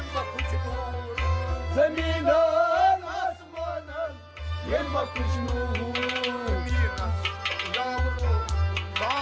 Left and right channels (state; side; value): identical; both; correlation 1.00